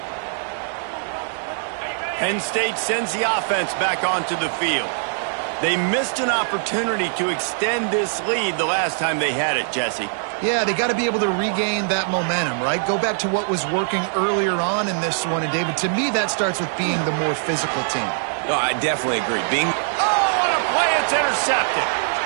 Penn State sends the offense back onto the field. They missed an opportunity to extend this lead the last time they had it, Jesse. Yeah, they got to be able to regain that momentum, right? Go back to what was working earlier on in this one. And, David, to me, that starts with being the more physical team. No, I definitely agree. Oh, what a play. It's intercepted.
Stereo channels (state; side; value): silent; left; 56 dB below the other